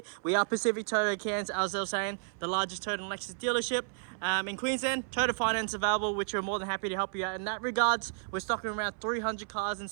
we are Pacific Toyota Cairns, as I was saying, the largest Toyota and Lexus dealership in Queensland. Toyota finance available, which we're more than happy to help you out in that regards. We're stocking around 300 cars in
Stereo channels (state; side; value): silent; left; 56 dB below the other